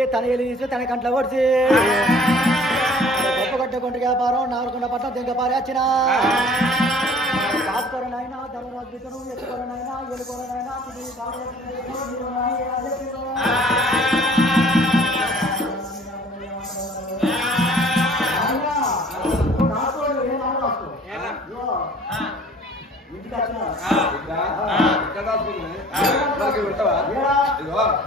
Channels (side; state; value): both; normal; correlation 0.51